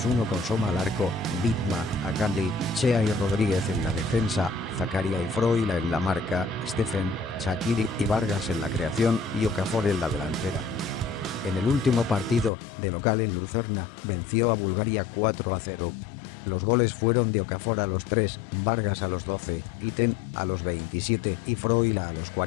con Soma al arco, Bitma, Akanji, Chea y Rodríguez en la defensa, Zakaria y Froila en la marca, Stephen, Shaqiri y Vargas en la creación y Okafor en la delantera. En el último partido, de local en Lucerna, venció a Bulgaria 4-0. Los goles fueron de Okafor a los 3, Vargas a los 12, Iten a los 27 y Froila a los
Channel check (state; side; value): drops out; right; at 12.5 s